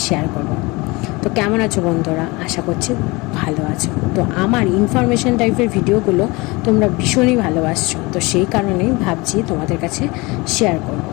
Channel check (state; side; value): quieter; right; 24.4 dB